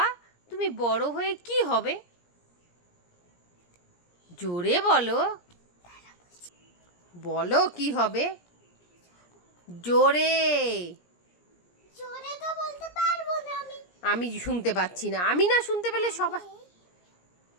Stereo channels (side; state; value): right; late; 17 ms